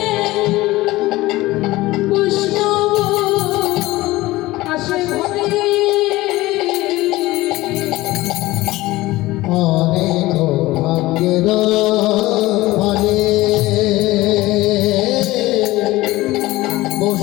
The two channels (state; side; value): quieter; right; 18.5 dB